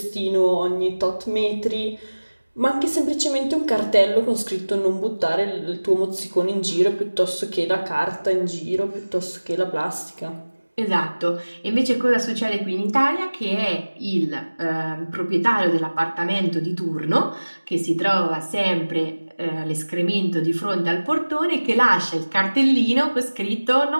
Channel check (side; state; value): both; inverted; correlation -1.00